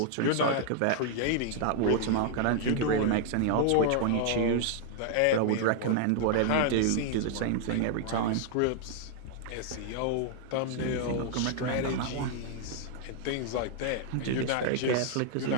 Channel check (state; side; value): different; both; correlation 0.00